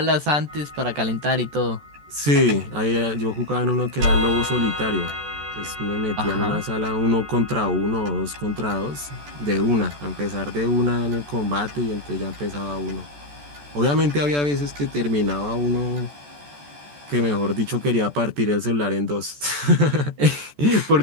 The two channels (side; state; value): left; late; 14 ms